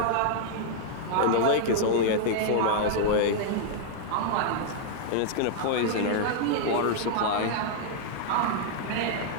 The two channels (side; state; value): both; different; correlation -0.01